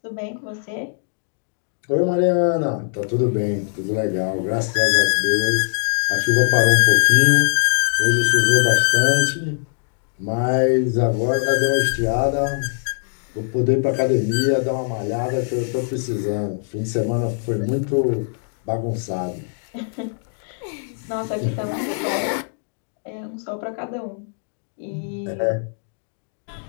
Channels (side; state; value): right; silent; digital silence